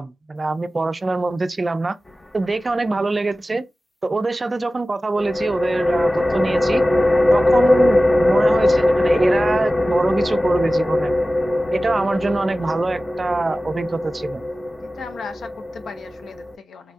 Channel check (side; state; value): both; normal; correlation 0.96